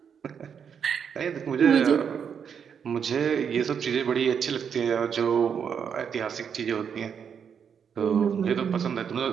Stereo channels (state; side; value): quieter; left; 7.3 dB